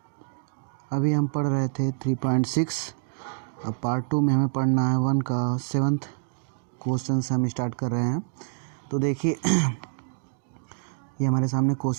अभी हम पढ़ रहे थे 3.6। अब पार्ट 2 में हमें पढ़ना है 1 का 7th क्वेश्चन से हम स्टार्ट कर रहे हैं। तो देखिए ये हमारे सामने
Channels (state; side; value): silent; left; digital silence